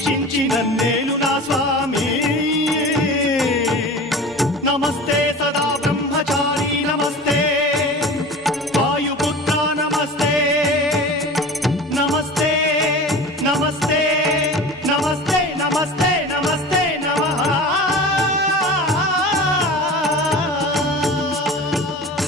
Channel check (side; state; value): both; normal; correlation 0.35